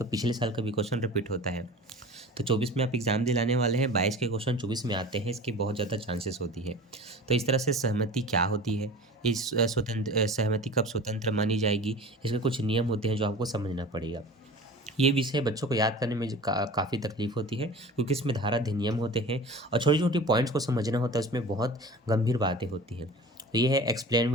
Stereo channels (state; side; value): normal; both; correlation 0.37